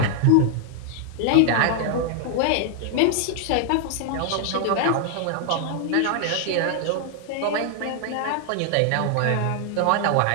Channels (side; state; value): both; different; correlation 0.00